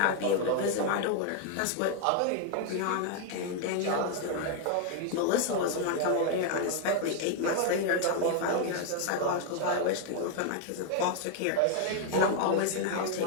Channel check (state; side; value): different; both; correlation 0.00